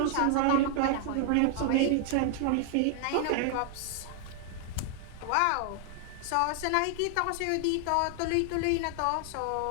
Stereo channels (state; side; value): different; both; correlation 0.00